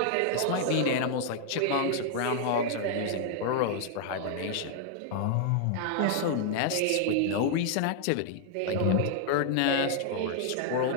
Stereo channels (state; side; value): different; both; correlation 0.00